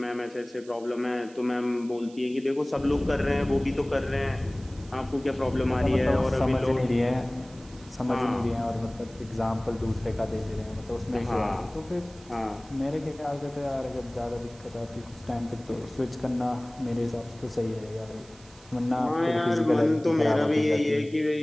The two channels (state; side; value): noise; right; hiss, 24 dB below the sound